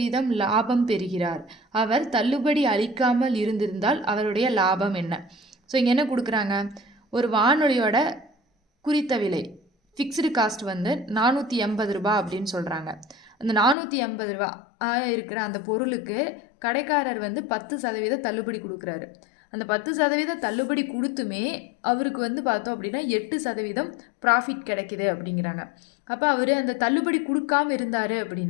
லாபம் பெறுகிறார். அவர் தள்ளுபடி அளிக்காமல் இருந்திருந்தால் அவருடைய லாபம் என்ன? ஸோ இங்கே என்ன கொடுக்குறாங்க? ஒரு வானொலியோட குறித்த விலை ஃபிக்ஸ்டு காஸ்ட் வந்து 480 ரூபா அப்படின்னு சொல்கிறாங்க. அந்த 480 ரூபா இருக்கிற அந்த பொருளுக்கு கடைக்காரர் வந்து 10% தள்ளுபடி கொடுக்குறாரு. அந்த 10% தள்ளுபடி கொடுத்துமே அவருக்கு வந்து பார்த்தோம் அப்படின்னா 8% ப்ராஃபிட் கிடைக்குது அப்படிங்கிறாங்க. அப்போ அவர் அந்த தள்ளுபடி கொடுக்காம இருந்தார்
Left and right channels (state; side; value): drops out; right; at 13.8 s